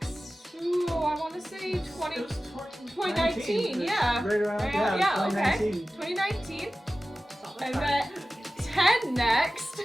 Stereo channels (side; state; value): both; normal; correlation 0.96